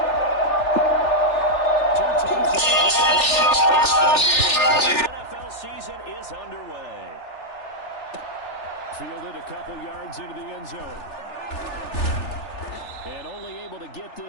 Two teams in the NFL season is underway. Fielded a couple yards into the end zone. And only able to get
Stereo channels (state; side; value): late; right; 3.4 ms